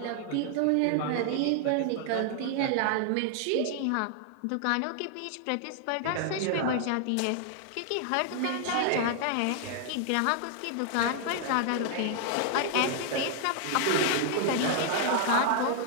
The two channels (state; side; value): different; both; correlation 0.00